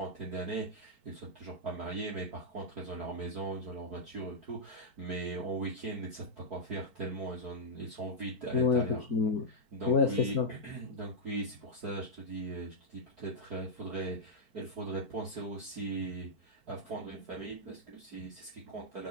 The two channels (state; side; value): late; left; 4.5 ms